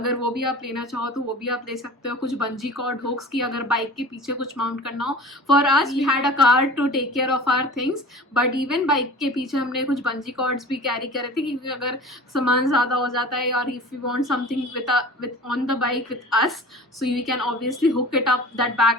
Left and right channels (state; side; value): normal; both; correlation 0.40